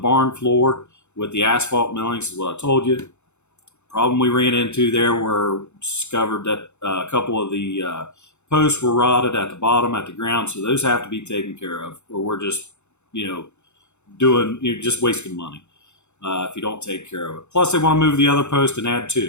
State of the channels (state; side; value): late; right; 0.83 ms